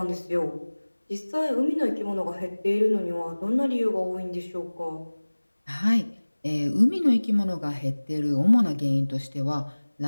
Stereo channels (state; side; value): inverted; both; correlation -1.00